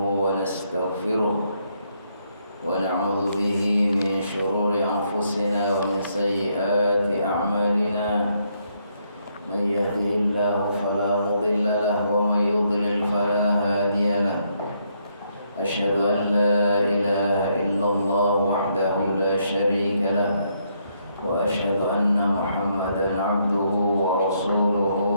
ونستغفره ونعوذ به من شرور أنفسنا ومن سيئات أعمالنا من يهده الله فلا مضل له ومن يضلل فلا هادي له أشهد أن لا إله إلا الله وحده لا شريك له وأشهد أن محمدا عبده ورسوله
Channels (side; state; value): both; inverted; correlation -0.74